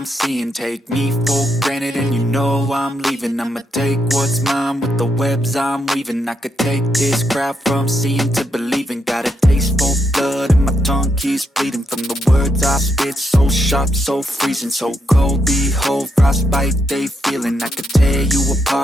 seeing. Take me for granted and you know I'm leaving. I'ma take what's mine with the webs I'm weaving. I could take this crowd from seeing to believing. Got a taste for blood and my tongue keeps bleeding from the words I spit. So sharp, so freezing, so cold. Behold, frostbite they feeling. I could tear you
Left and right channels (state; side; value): normal; both; correlation 0.79